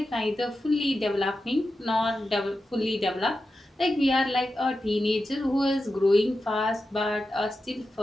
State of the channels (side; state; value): both; normal; correlation 0.91